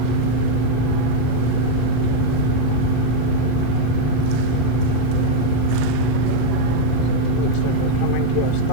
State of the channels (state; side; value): different; both; correlation 0.00